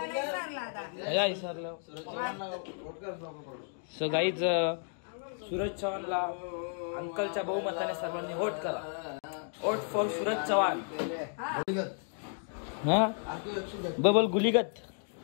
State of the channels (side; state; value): right; silent; 56 dB below the other